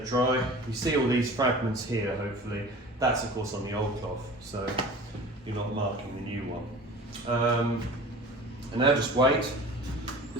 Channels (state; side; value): normal; both; correlation 0.40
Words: dry. You see all these fragments here, hopefully. That's of course on the old cloth, so you're not marking the new one. And now just wait.